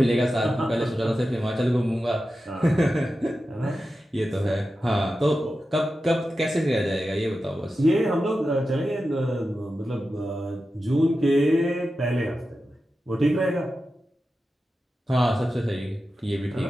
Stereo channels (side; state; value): both; normal; correlation 0.92